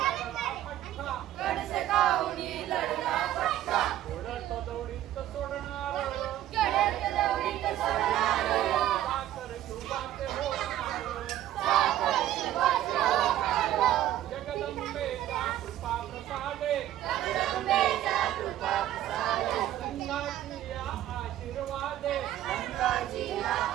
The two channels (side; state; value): left; quieter; 12.9 dB